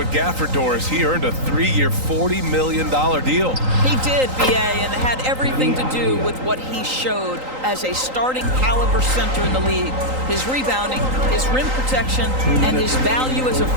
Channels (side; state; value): left; late; 3.8 ms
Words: Gafford, Doris, he earned a 3-year, $40 million deal. He did, B.A., and it had everything to do with what he showed as a starting caliber center in the league. His rebounding, his rim protection, and his value as a